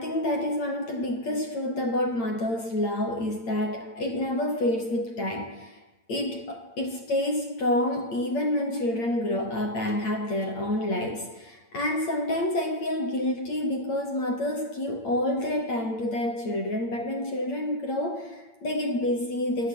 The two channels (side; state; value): right; late; 8.8 ms